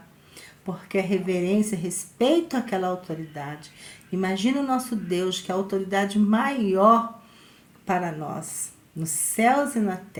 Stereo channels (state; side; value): identical; both; correlation 1.00